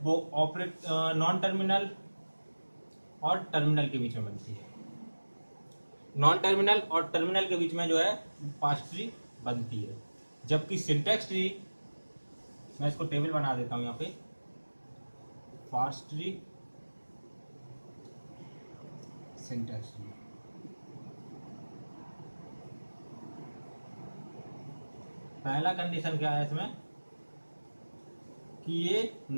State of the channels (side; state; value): both; inverted; correlation -1.00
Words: वो नॉन टर्मिनल और टर्मिनल के बीच में बनती है। नॉन टर्मिनल और टर्मिनल के बीच में जो है पार्स ट्री बनती है। जबकि सिंटैक्स ट्री, मैं इसको टेबल बना देता हूं यहाँ पे, पार्स ट्री, सिंटैक्स ट्री, पहला कंडीशन क्या है इसमें कि ये